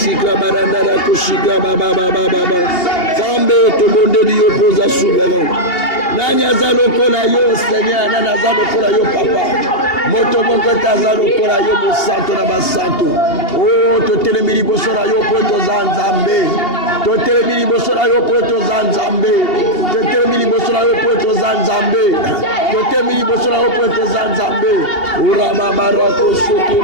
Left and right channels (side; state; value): right; late; 2.8 ms